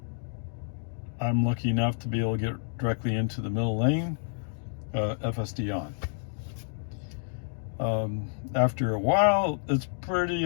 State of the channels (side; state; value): right; silent; digital silence